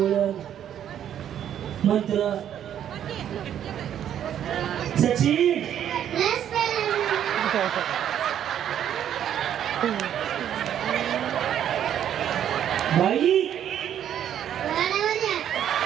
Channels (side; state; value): left; quieter; 10.1 dB